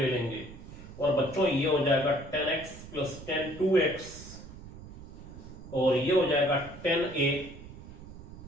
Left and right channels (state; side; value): noise; right; rumble, 15 dB below the sound